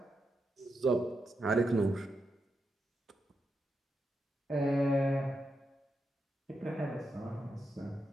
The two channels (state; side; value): normal; both; correlation 0.85